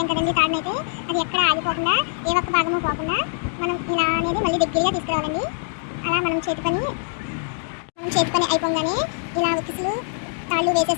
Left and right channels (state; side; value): silent; right; digital silence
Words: కదండి తాడునైతే. అది ఎక్కడ ఆగిపోకుండా ఏ ఒక్క భాగము పోకుండా మనం ఇలా అనేది మళ్ళీ దగ్గరగా తీసుకురావాలండి. అలా మనం చేతి పని అయిపోగానే ఇలా ఉక్కిసులు తాళ్ళు